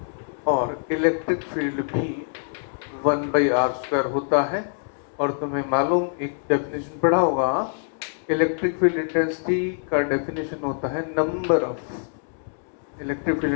और electric field भी 1 by are square होता है। और तुम्हें मालूम, एक डेफिनेशन पढ़ा होगा, इलेक्ट्रिक फील्ड इंटेंसिटी का डेफिनेशन होता है number of electric field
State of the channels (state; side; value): silent; right; digital silence